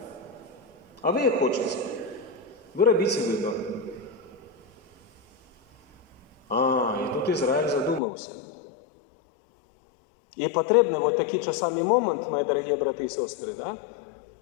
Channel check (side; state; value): right; drops out; at 8.0 s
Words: А ви як хочете? Ви робите вибір. І тут Ізраїль задумався. І потрібний вот такий часами момент, мої дорогі брати і сестри, да?